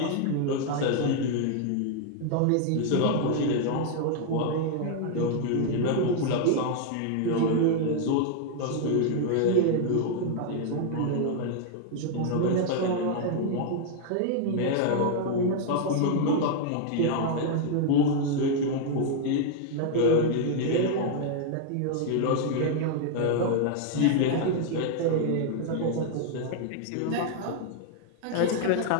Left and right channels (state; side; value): different; both; correlation 0.00